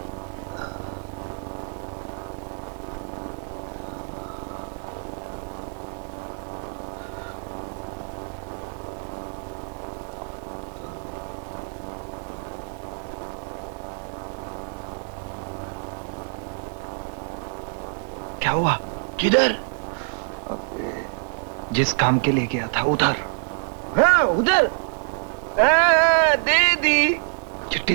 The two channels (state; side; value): silent; left; digital silence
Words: क्या हुआ? किधर? जिस काम के लिए गया था उधर। हाँ, उधर। दे दी